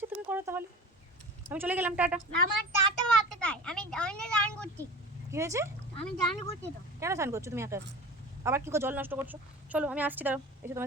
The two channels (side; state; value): both; normal; correlation 0.36